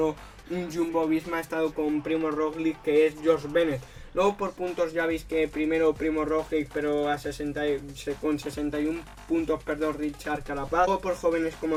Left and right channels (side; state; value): both; identical; correlation 1.00